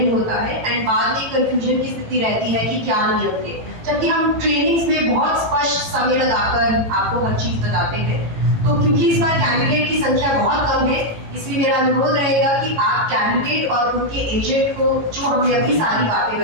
होता है एंड बाद में कंफ्यूजन की स्थिति रहती है कि क्या नियम थे, जबकि हम ट्रेनिंग्स में बहुत स्पष्ट समय लगाकर आपको हर चीज बताते हैं। तो क्योंकि इस बार कैंडिडेट की संख्या बहुत कम है, इसलिए मेरा अनुरोध रहेगा कि आप कैंडिडेट और उनके एजेंट को, जो हमने अभी सारी बातें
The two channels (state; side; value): late; left; 18 ms